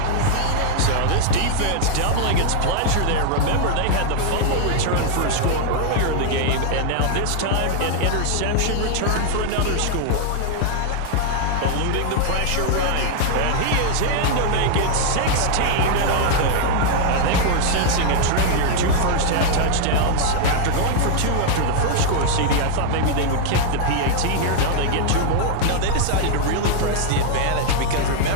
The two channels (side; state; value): both; different; correlation 0.00